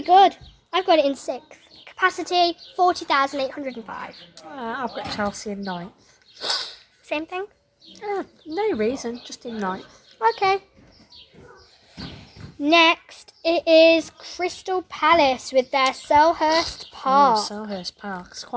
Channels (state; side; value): identical; both; correlation 1.00